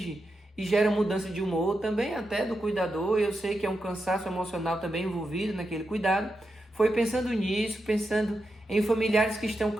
e gera mudança de humor, também até do cuidador. Eu sei que é um cansaço emocional também envolvido naquele cuidado. Foi pensando nisso, pensando em familiares que estão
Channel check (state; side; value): normal; both; correlation 0.87